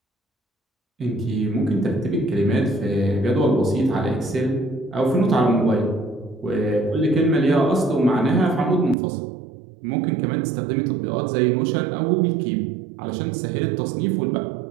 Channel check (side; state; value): left; drops out; at 9.0 s